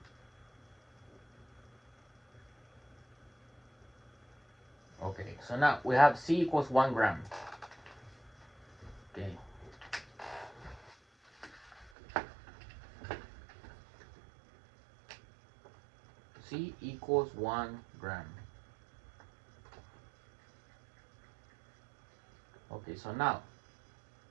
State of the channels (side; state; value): left; drops out; at 11.9 s